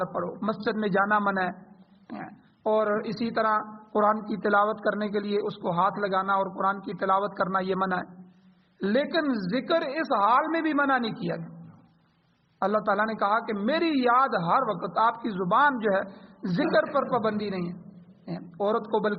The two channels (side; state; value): both; identical; correlation 1.00